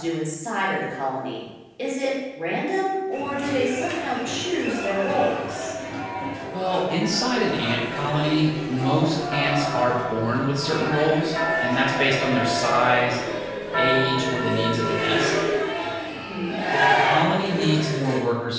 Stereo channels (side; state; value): both; identical; correlation 1.00